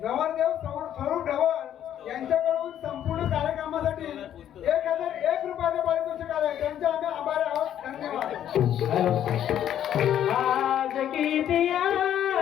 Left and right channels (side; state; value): right; quieter; 10.6 dB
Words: नवरदेव स्वरूप ढवळ यांच्याकडून संपूर्ण कार्यक्रमासाठी 1001 रुपयाचे पारितोषिक आले त्यांचे आम्ही आभारी आहोत धन्यवाद आज किती